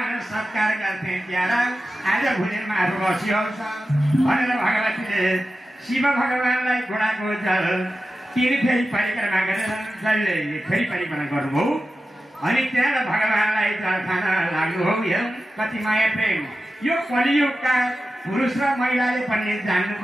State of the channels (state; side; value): normal; both; correlation 0.93